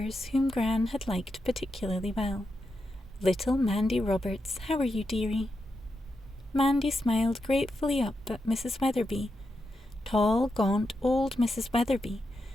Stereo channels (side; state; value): both; normal; correlation 0.86